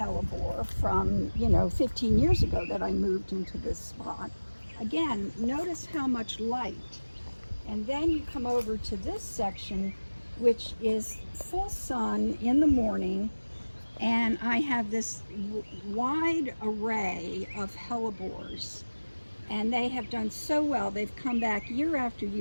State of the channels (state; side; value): inverted; both; correlation -1.00